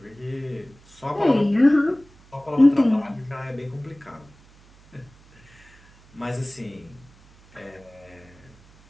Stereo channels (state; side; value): noise; right; hum, 26 dB below the sound